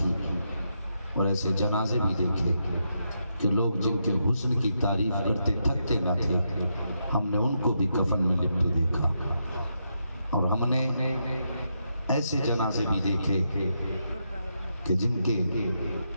اور ایسے جنازے بھی دیکھے کہ لوگ جن کے حسن کی تعریف کرتے تھکتے نہ تھے، ہم نے ان کو بھی کفن میں لپٹے دیکھا۔ اور ہم نے ایسے جنازے بھی دیکھے کہ جن کے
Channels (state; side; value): inverted; both; correlation -0.82